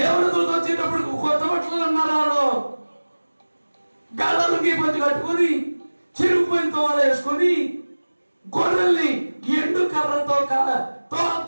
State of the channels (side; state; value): both; inverted; correlation -1.00